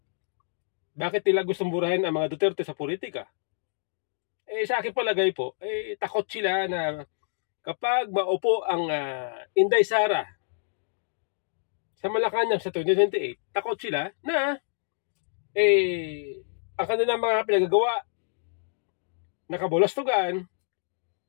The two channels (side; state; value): right; silent; digital silence